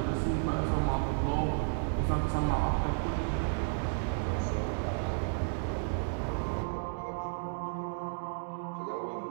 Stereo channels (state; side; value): silent; left; digital silence